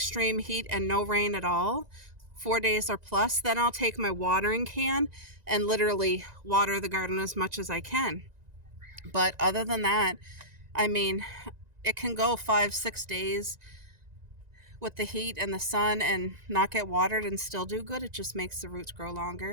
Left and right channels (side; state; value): left; late; 1.9 ms